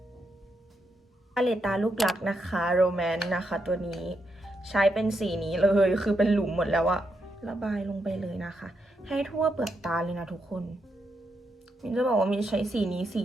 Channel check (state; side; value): normal; both; correlation 0.82